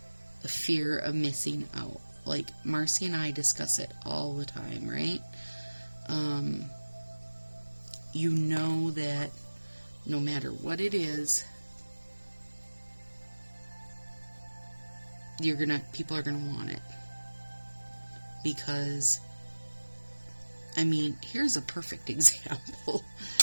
fear of missing out. Like, Marcy and I discuss it all the time, right? You know that no matter what it is, people are gonna want it. Because, I mean, here's a perfect example.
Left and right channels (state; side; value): inverted; both; correlation -1.00